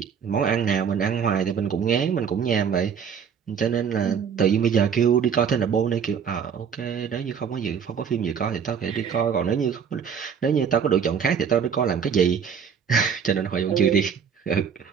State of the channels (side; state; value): left; quieter; 7.2 dB